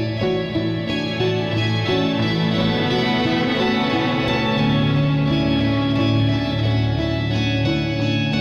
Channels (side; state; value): both; identical; correlation 1.00